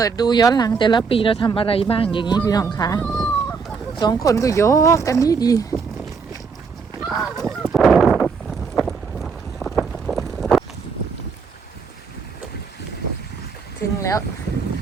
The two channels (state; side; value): quieter; left; 5.3 dB